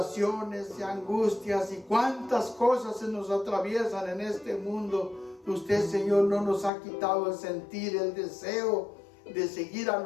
y angustias y cuántas cosas se nos atraviesan en este mundo, usted, Señor, no nos ha quitado el sentir, el deseo de seguir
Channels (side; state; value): right; drops out; at 6.7 s